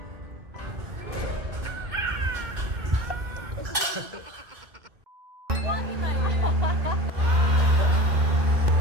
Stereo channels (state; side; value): late; left; 1.9 ms